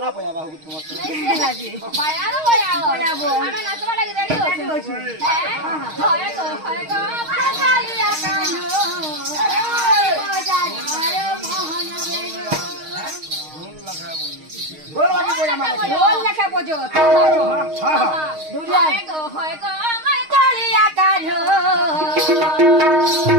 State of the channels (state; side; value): late; left; 6.4 ms